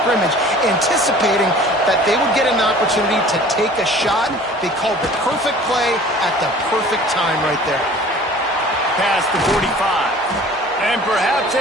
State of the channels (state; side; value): normal; both; correlation 0.47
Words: anticipating that they would get an opportunity to take a shot. They called the perfect play at the perfect time right there. Past the 45. And perhaps